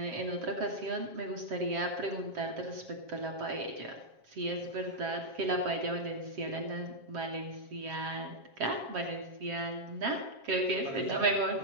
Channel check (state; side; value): late; left; 7.4 ms